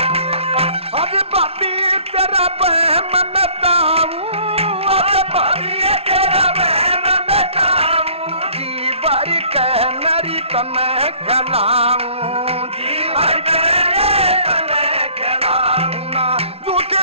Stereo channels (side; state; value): left; late; 0.29 ms